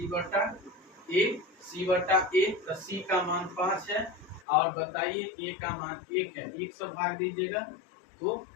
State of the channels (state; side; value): drops out; right; at 4.5 s